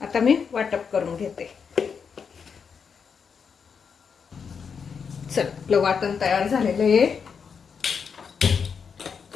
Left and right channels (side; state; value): right; quieter; 6.3 dB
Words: आता मी वाटप करून घेते। चल, आपलं वाटण तयार झालेलं आहे।